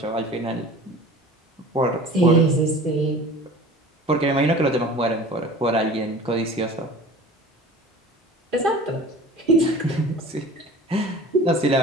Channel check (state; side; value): normal; both; correlation 0.41